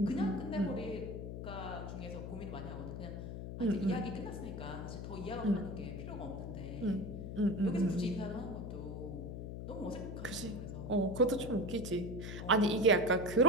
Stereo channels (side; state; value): left; noise; hum, 7 dB below the sound